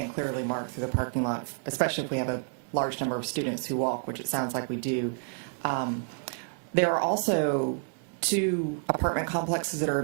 clearly marked through the parking lot, especially if we have a large number of students who walk, which it sounds like we do. There are also 2 apartment complexes that are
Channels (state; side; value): silent; left; 58 dB below the other